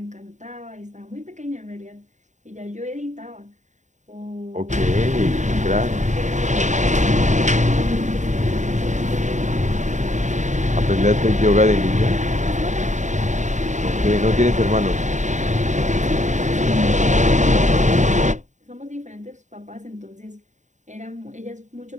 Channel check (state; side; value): late; left; 0.35 ms